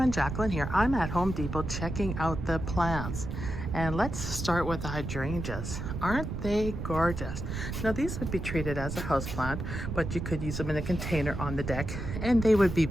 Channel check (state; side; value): noise; right; rumble, 5 dB below the sound